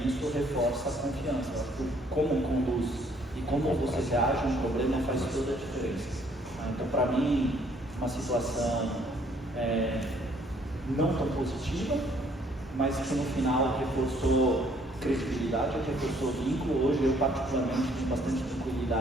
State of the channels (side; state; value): both; normal; correlation 0.63